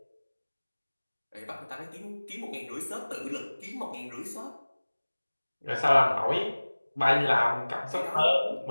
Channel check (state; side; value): inverted; both; correlation -1.00